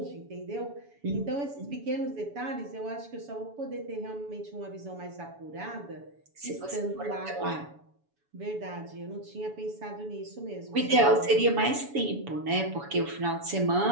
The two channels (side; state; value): left; late; 7.1 ms